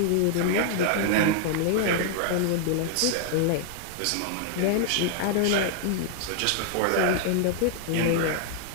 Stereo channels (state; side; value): different; both; correlation 0.00